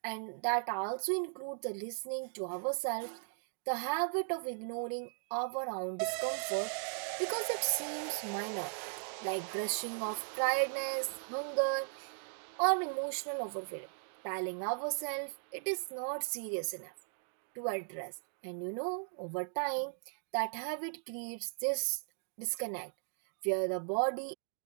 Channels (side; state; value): left; silent; digital silence